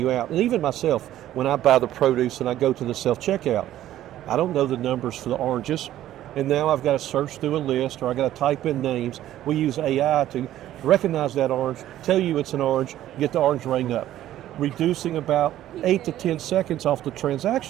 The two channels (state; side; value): quieter; left; 13.0 dB